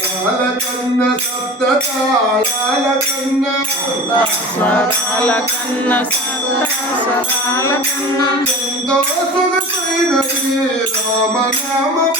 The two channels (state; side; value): normal; both; correlation 0.36